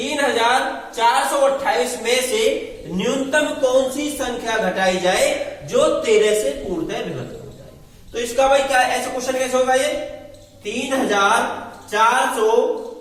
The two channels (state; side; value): identical; both; correlation 1.00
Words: में से न्यूनतम कौन सी संख्या घटाई जाए जो 13 से पूर्णतः विभक्त हो जाए? तो इसका भाई क्या ऐसा क्वेश्चन कैसे होगा? ये